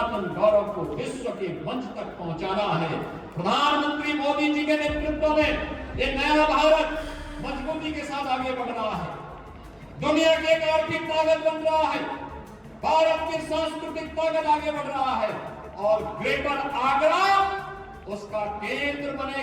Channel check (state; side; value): identical; both; correlation 1.00